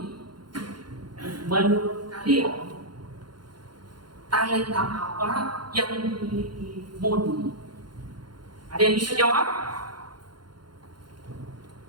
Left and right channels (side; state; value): left; late; 0.71 ms